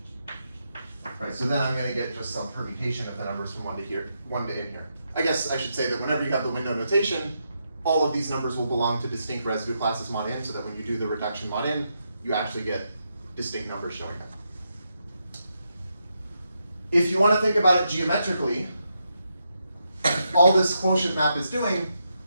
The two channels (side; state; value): both; inverted; correlation -0.82